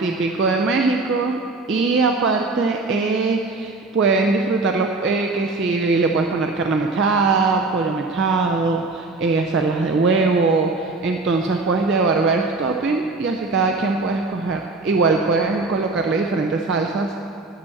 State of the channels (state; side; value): quieter; left; 3.5 dB